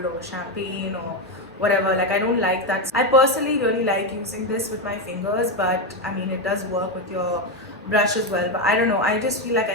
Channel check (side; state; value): both; normal; correlation 0.09